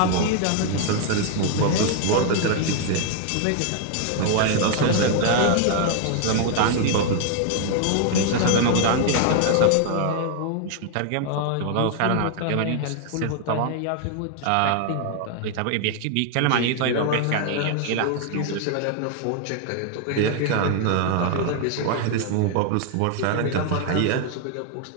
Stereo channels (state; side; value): different; both; correlation 0.00